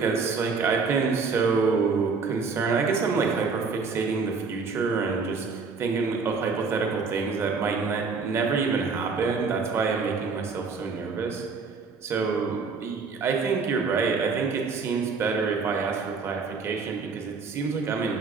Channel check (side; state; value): left; quieter; 4.8 dB